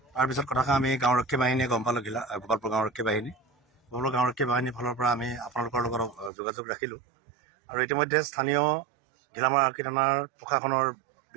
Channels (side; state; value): left; drops out; at 6.3 s